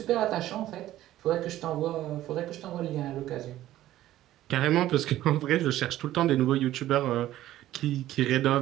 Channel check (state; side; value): quieter; left; 14.1 dB